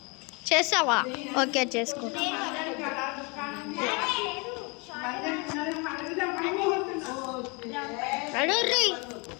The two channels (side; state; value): right; quieter; 30.2 dB